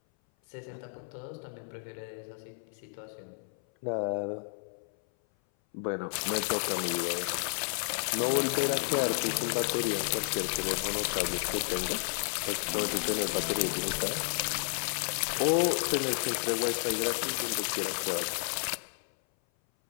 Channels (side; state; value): right; silent; 57 dB below the other